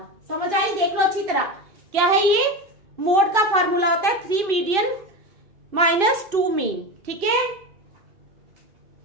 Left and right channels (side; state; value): left; late; 2.7 ms